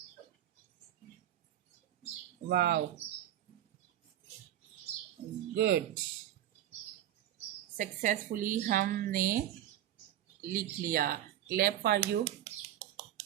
Wow, good. सक्सेसफुली हमने लिख लिया, क्लैप फॉर यू।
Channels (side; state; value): left; quieter; 12.2 dB